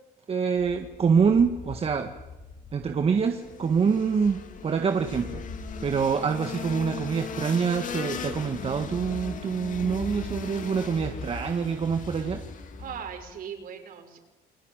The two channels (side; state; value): left; quieter; 5.0 dB